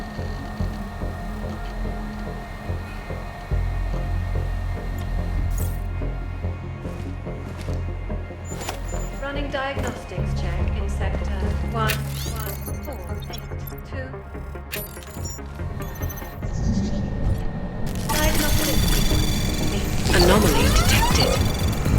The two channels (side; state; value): both; identical; correlation 1.00